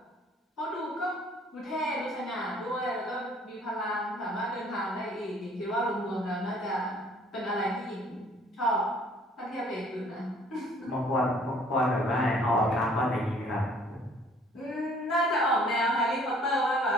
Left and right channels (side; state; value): both; normal; correlation 0.57